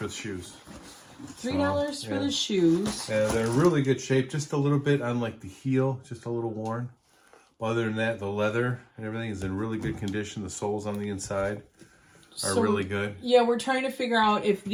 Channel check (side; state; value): both; identical; correlation 1.00